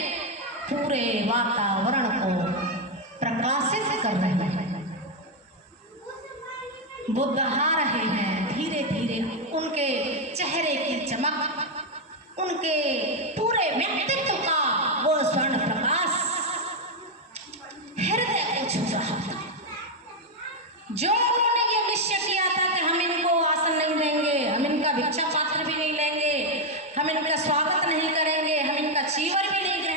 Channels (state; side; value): normal; both; correlation 0.03